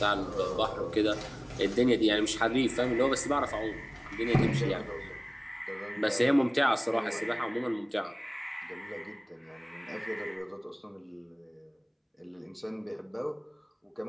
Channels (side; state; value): both; identical; correlation 1.00